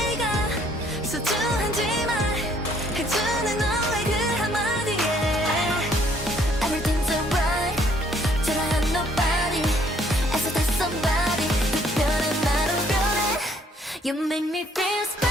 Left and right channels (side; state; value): both; normal; correlation 0.64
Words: 소중한지 말해주는 너의 그 한마디에 Everything's alright 초라한 nobody 애써 다 somebody 특별한 나로 변해 You make me feel